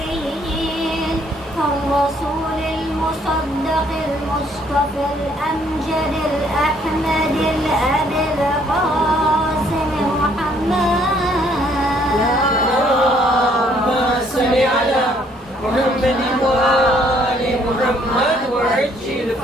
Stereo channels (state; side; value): normal; both; correlation 0.65